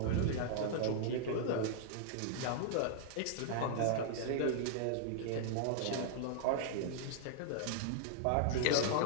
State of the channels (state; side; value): different; both; correlation -0.01